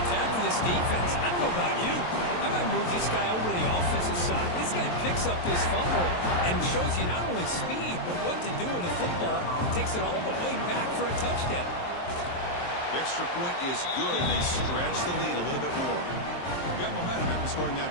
that for this defense? I don't know about you. I might move this guy over to the offensive side. This guy picks up this fumble and shows you not only speed, but what to do with the football. Takes it all the way back for a touchdown. The extra point is good, and they stretch the lead a little bit more. Got momentum after scoring that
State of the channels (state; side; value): late; right; 23 ms